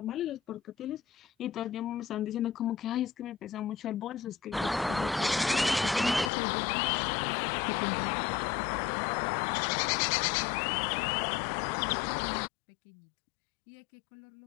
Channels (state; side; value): drops out; right; at 6.3 s